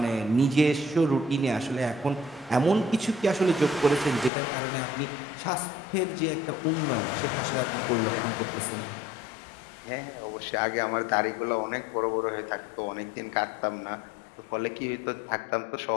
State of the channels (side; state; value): right; drops out; at 4.3 s